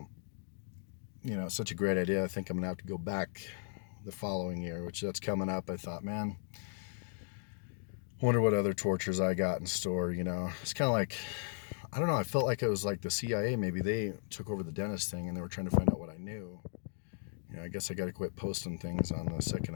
it's such a great idea. I think I'm gonna have to go back the following year, which that's coming up. I thought, man, wonder what other tortures I got in store. It's kind of like, I don't know. I felt like it was like the CIA. Maybe they took over the dentist thing, and they were trying to find out what I knew. I guess I got to quit posting things on the Second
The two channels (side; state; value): right; silent; digital silence